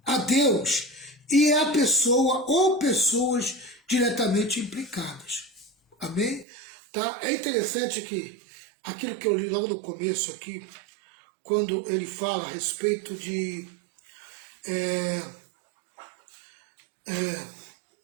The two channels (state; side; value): drops out; left; at 6.5 s